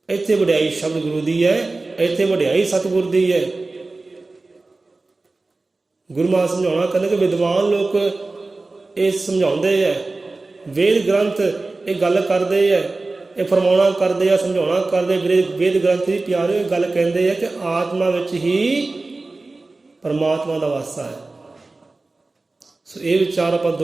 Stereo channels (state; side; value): quieter; left; 3.4 dB